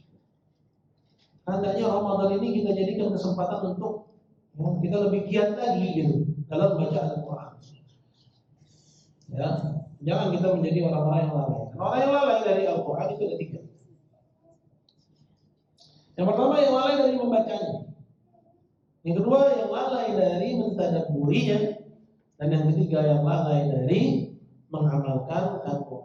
hendaknya Ramadan ini kita jadikan kesempatan untuk ya, kita lebih giat lagi gitu dalam baca Al-Quran. Ya, jangan kita menjadi orang-orang yang lalai. Orang yang lalai dari Al-Quran itu ada tiga. Yang pertama yang lalai dari membacanya. Yang kedua yang lalai dari mentadabburinya. Dan yang ketiga yang lalai dari mengamalkan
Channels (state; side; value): identical; both; correlation 1.00